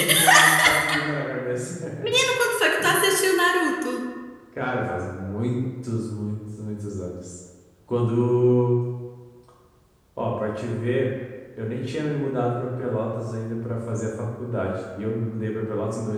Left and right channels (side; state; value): both; identical; correlation 1.00